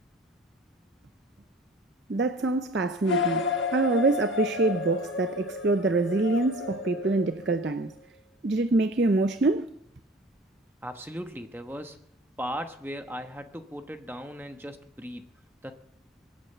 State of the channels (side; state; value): both; normal; correlation 0.42